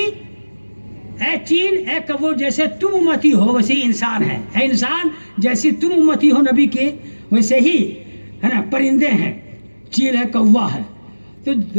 ऐ चील, ऐ कौवो, जैसे तुम उम्मती हो वैसे ही इंसान है। ऐ इंसान, जैसी तुम उम्मती हो नबी के वैसे ही है ना परिंदे हैं, चील है, कौवा है। तो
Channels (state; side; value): inverted; both; correlation -1.00